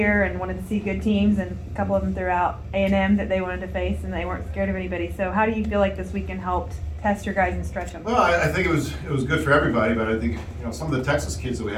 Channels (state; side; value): identical; both; correlation 1.00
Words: and wanted to see good teams, and a couple of them threw out A&M that they wanted to face, and they weren't scared of anybody. So how do you feel like this weekend helped test your guys and stretch them? Well, I think it was good for everybody, but I think some of the Texas kids that we